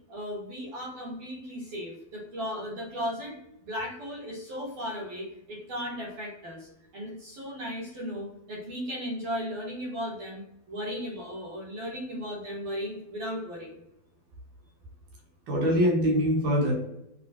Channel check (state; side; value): late; left; 12 ms